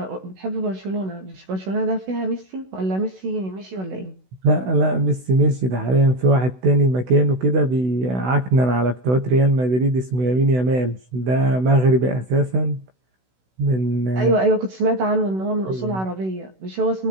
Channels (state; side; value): late; left; 16 ms